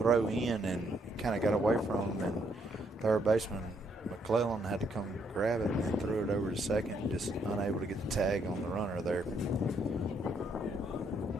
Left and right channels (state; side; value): normal; both; correlation 0.72